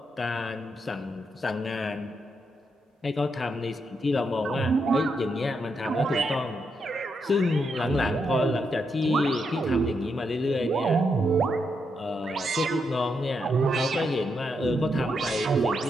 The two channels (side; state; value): both; normal; correlation 0.81